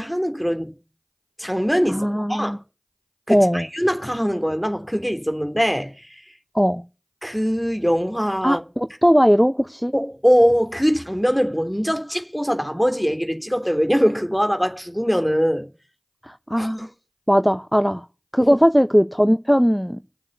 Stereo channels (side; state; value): both; identical; correlation 1.00